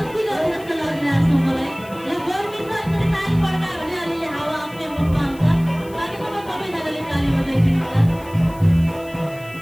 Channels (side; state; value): left; noise; hiss, 23 dB below the sound